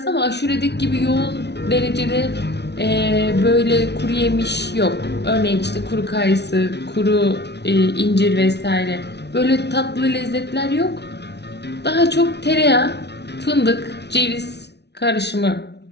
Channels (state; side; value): late; right; 0.50 ms